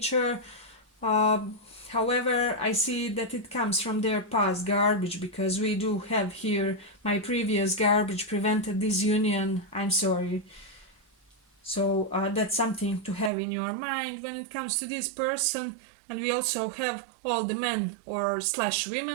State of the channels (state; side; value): drops out; left; at 13.3 s